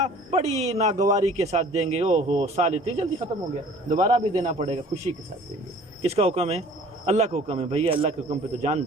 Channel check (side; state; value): both; normal; correlation 0.50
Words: بڑی ناگواری کے ساتھ دیں گے، او ہو سال اتنی جلدی ختم ہو گیا، دوبارہ بھی دینا پڑے گا، خوشی کے ساتھ دیں گے۔ کس کا حکم ہے؟ اللہ کا حکم ہے، بھیا اللہ کے حکم پہ تو جان